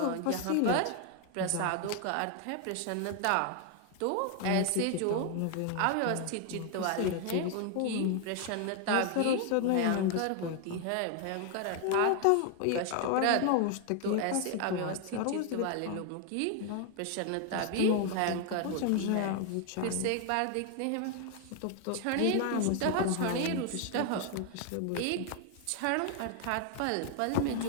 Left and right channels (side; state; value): both; different; correlation 0.00